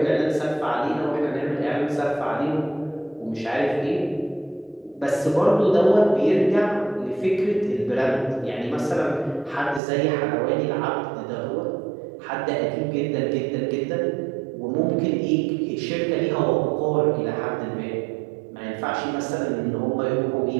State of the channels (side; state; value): left; drops out; at 9.8 s